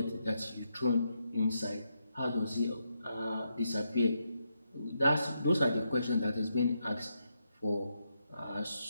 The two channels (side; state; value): both; inverted; correlation -0.82